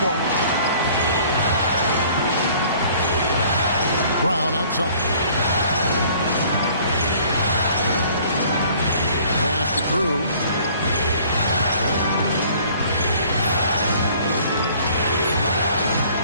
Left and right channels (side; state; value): both; inverted; correlation -0.54